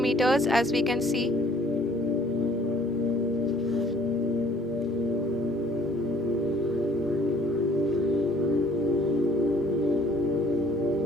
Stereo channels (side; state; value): both; normal; correlation 0.58